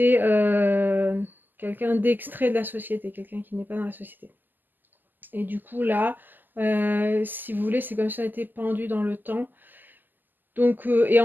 quelqu'un d'extrait de la société, quelqu'un qui n'est pas dans la société. Et du coup, là, si vous voulez, c'est comme si on était pendu dans le temps. Donc, et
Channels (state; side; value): late; left; 0.088 ms